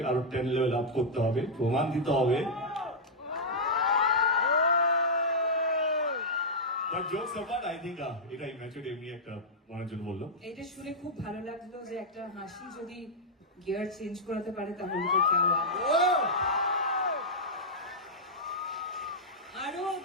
আরো 10 লেভেল আপ করতে হবে, প্রমাণ দিতে হবে। But jokes apart, I think এটা ইম্যাচুর এমনি একটা মনের জন্য বললো। এটা শুনে খুব ভালো লাগলো যে একটা হাসি যদি গিয়ার চেঞ্জ করাতে পারে তাহলে তো কেমন। আরো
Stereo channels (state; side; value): normal; both; correlation -0.08